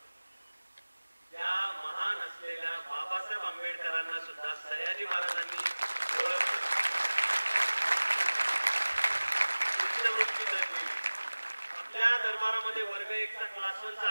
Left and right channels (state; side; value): inverted; both; correlation -1.00